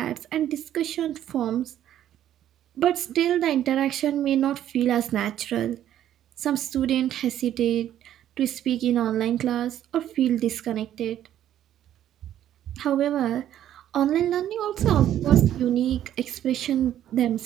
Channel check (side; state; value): left; quieter; 11.5 dB